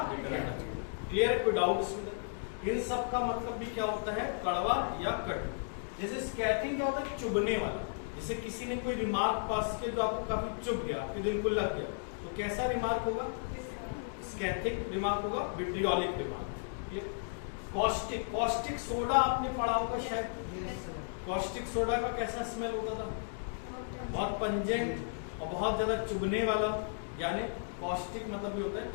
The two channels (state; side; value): silent; right; digital silence